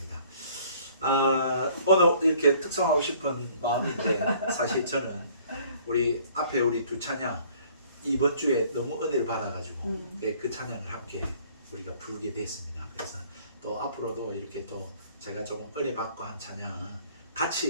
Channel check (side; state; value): both; inverted; correlation -0.57